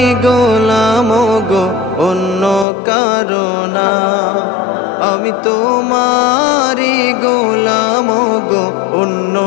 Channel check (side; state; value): right; drops out; at 2.7 s